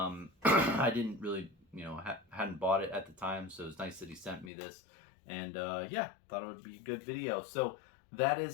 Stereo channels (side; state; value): right; drops out; at 4.5 s